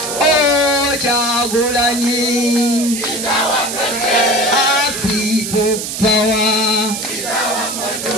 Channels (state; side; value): noise; right; hiss, 5 dB below the sound